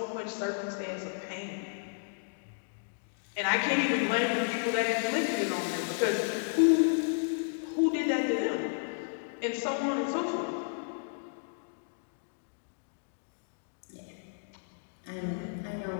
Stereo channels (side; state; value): right; silent; digital silence